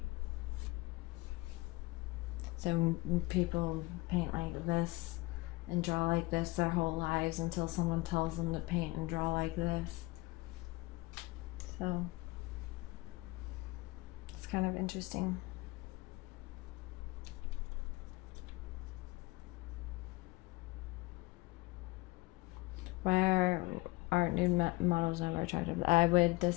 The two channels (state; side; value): quieter; right; 21.9 dB